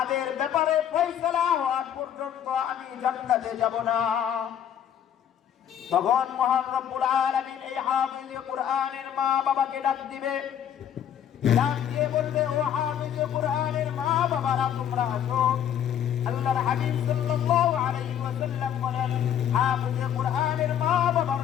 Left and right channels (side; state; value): right; quieter; 9.6 dB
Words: ব্যাপারে ফয়সালা হওয়ার পর্যন্ত আমি জান্নাতে যাব না। তখন মহান রব্বুল আলামিন এই হাফিজে কুরআনের মা বাবাকে ডাক দিবে, ডাক দিয়ে বলবে, ও হাফিজে কুরআনের মা বাবারা তোমরা আসো। আল্লাহর হাবিব সাল্লাল্লাহু আলাইহি ওয়াসাল্লাম বলেন, হাফিজে কুরআনের মা বাবার